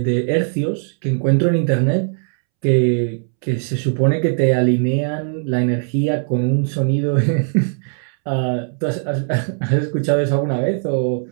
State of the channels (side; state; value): left; silent; 67 dB below the other